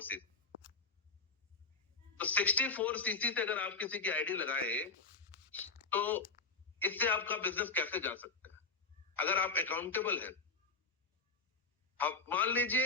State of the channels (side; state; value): right; quieter; 4.0 dB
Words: सीसी। तो 64 सीसी से अगर आप किसी की आईडी लगाए तो इससे आपका बिजनेस कैसे जा सकता है अगर आप अकाउंटेबल हैं। आप मान